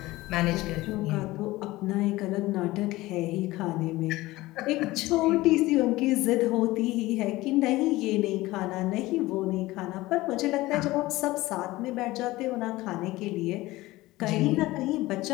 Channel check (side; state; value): right; quieter; 18.7 dB